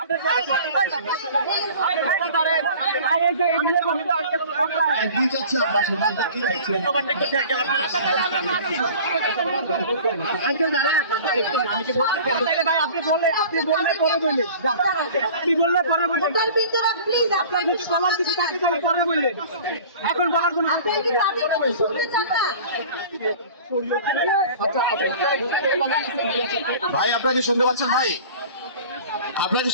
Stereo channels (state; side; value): inverted; both; correlation -0.43